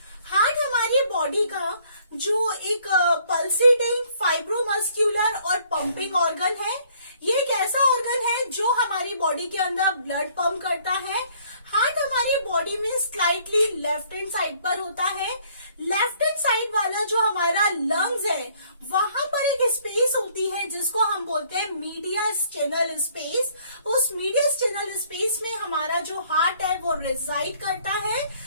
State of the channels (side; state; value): both; inverted; correlation -0.61